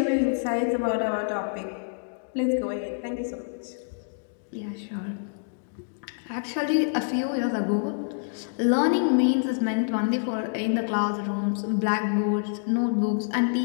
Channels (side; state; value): right; silent; digital silence